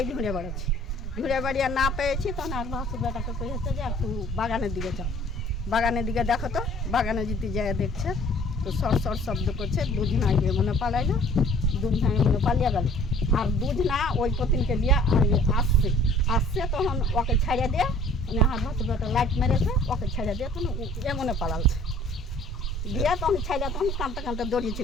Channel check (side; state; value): both; normal; correlation 0.53